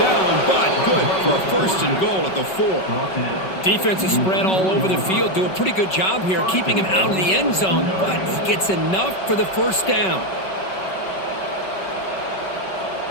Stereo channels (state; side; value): late; right; 5.3 ms